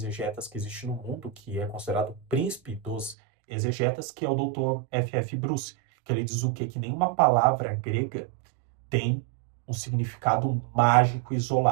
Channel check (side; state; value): left; drops out; at 3.2 s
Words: que existe no mundo, que é considerado o príncipe dos exegetas, que é o Dr. F.F. Bruce, que ele diz o quê? Que nenhuma palavra grega tem um significado mágico